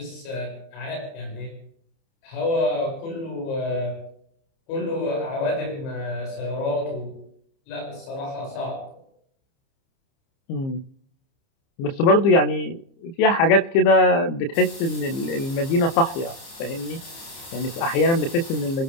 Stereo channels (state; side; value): late; right; 30 ms